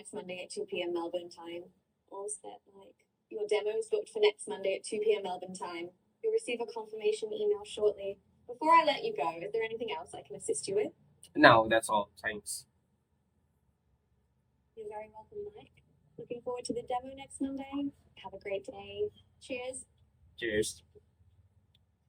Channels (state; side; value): identical; both; correlation 1.00